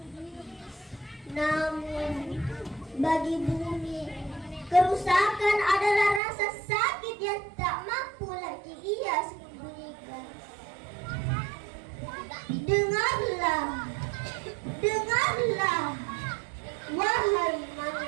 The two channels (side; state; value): left; drops out; at 6.2 s